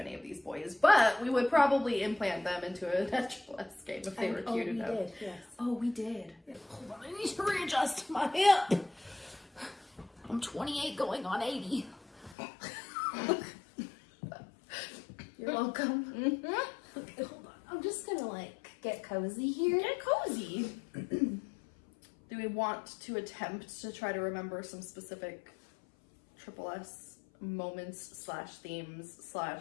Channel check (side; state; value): right; drops out; at 12.4 s